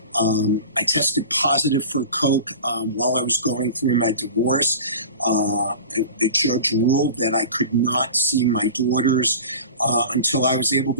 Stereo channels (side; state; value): both; inverted; correlation -0.36